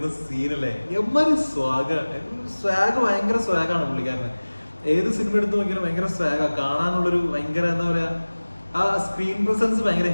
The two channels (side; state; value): both; inverted; correlation -1.00